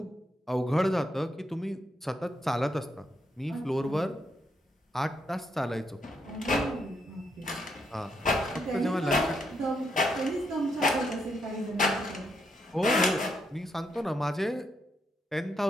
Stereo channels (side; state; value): both; normal; correlation 0.79